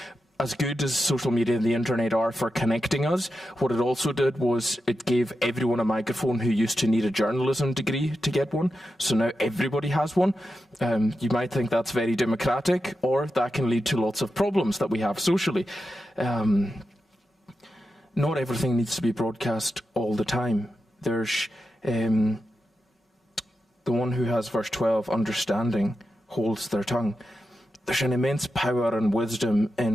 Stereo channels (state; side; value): normal; both; correlation 0.89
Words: as good as social media and the internet are for connecting us, what it also did was it gave everyone a microphone who used to need a journalism degree to get one. So now everybody has one. You might think that's very democratic, or that can lead to lots of problems that we have socially. Not everything needs to be broadcast all the time. There's the one who has verse 12, understanding, holds their tongue. There's an immense power and wisdom